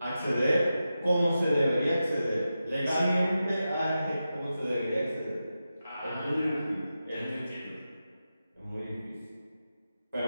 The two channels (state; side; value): inverted; both; correlation -0.91